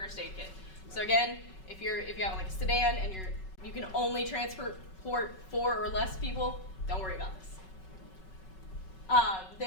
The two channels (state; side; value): late; right; 5.3 ms